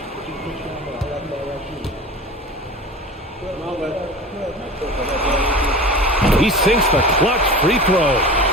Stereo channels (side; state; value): both; normal; correlation 0.35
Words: He sinks the clutch free throw.